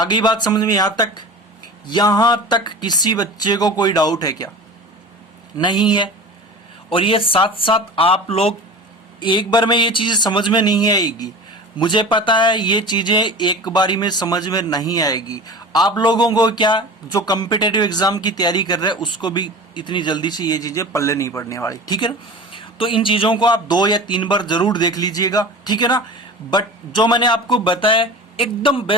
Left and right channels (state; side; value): normal; both; correlation 0.35